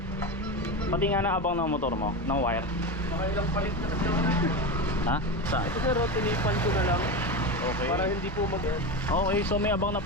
Pati nga na abang ng motor mo? Ng wire? Makailang palit na kasi ako na. Ha? Saan? Ito sir, tinipan ko na lang. Okay. Para hindi po mag... Okay, so may abang na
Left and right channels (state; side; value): normal; both; correlation 0.20